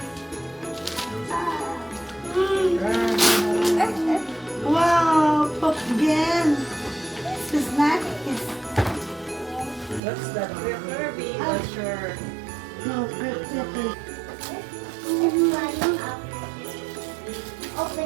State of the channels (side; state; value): left; drops out; at 10.0 s